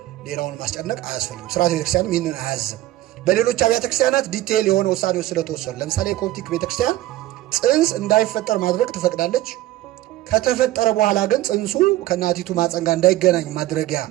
ሌላውን ማስጨነቅ አያስፈልግም። ስርዓተ ቤተክርስቲያንም ይህንን አያዝም። በሌሎች አብያተ ክርስቲያናት ዲቴይል የሆነ ውሳኔዎች ስለተወሰኑ፣ ለምሳሌ የኮፕቲክ ቤተክርስቲያን ፅንስ እንዳይፈጠር ማድረግ ትፈቅዳለች። ከተፈጠረ በኋላ ግን ፅንሱ ከእናቲቱ ማፀን ጋር እንዳይገናኝ ማድረጊያ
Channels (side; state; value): left; quieter; 15.6 dB